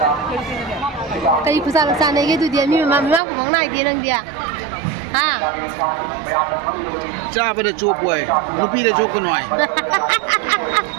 ꯀꯔꯤ ꯈꯨꯆꯥ ꯆꯥꯅꯩꯒꯦ ꯑꯗꯨꯗꯤ ꯃꯤ ꯃꯃꯥꯡ ꯈꯨꯃꯪ ꯅꯥꯏꯗꯦ ꯅꯪꯗꯤ ꯍꯥ ꯆꯥꯕꯗ ꯆꯣꯞ ꯑꯣꯏ ꯅꯨꯄꯤꯗ ꯆꯣꯞꯀꯅꯨ ꯍꯥꯏ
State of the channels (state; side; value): drops out; left; at 3.2 s